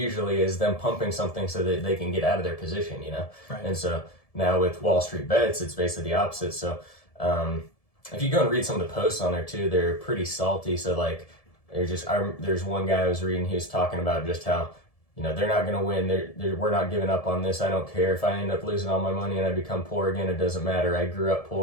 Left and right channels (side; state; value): right; late; 1.7 ms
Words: is them pumping something so that they can get out of their position, Right. And so now with WallStreetBets, it's basically the opposite. So if you go and read some of the posts on there too, they're pretty salty. So like there's one guy I was reading, he was talking about just how they're not going to win. We're not giving up on this. I don't care if I end up losing all my money and I become poor again. It doesn't matter. I grew up